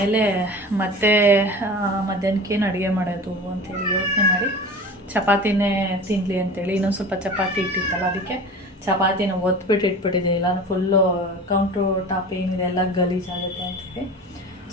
ಮತ್ತೆ ಮಧ್ಯಾಹ್ನಕ್ಕೇನು ಅಡುಗೆ ಮಾಡೋದು ಅಂತೇಳಿ ಯೋಚನೆ ಮಾಡಿ ಚಪಾತಿನೇ ತಿನ್ನಲಿ ಅಂತೇಳಿ ಇನ್ನೊಂದು ಸ್ವಲ್ಪ ಚಪಾತಿ ಇಟ್ಟಿತ್ತಲ್ಲ, ಅದಕ್ಕೆ ಚಪಾತಿನ ಒತ್ಬಿಟ್ಟು ಇಟ್ಬಿಟ್ಟಿದೆ. ಇಲ್ಲ ಫುಲ್ಲು ಕೌಂಟ್ರು ಟಾಪ್ ಏನಿದೆ ಎಲ್ಲ ಗಲೀಜಾಗುತ್ತೆ ಅಂತೇಳಿ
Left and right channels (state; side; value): normal; both; correlation 0.36